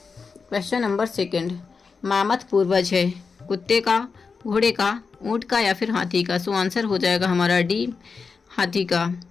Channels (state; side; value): quieter; right; 5.0 dB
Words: क्वेश्चन नंबर 2, मामथ पूर्वज है कुत्ते का, घोड़े का, ऊंट का या फिर हाथी का? सो आंसर हो जाएगा हमारा डी, हाथी का।